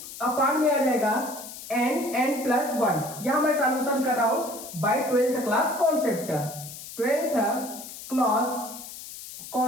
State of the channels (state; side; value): noise; left; hiss, 12 dB below the sound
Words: में आ जाएगा n प्लस 1, यहां मैं सॉल्यूशन कर रहा हूं by 12th class concept, 12th class